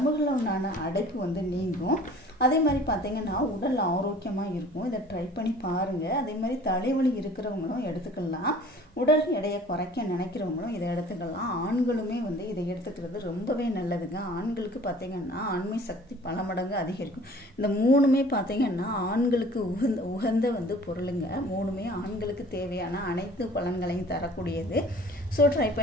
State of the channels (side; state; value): both; normal; correlation 0.49